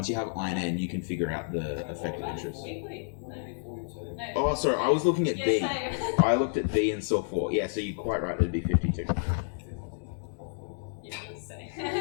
you have I and N, you can figure out the effective interest. Oh, sorry, I was looking at B. I looked at B and saw 4. Yeah, so you're quite right, it'd be 52.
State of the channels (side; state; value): right; silent; digital silence